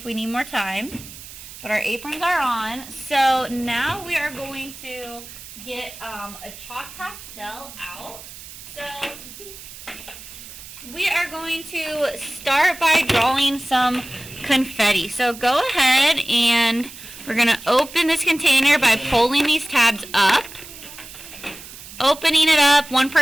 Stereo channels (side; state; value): right; noise; hiss, 15 dB below the sound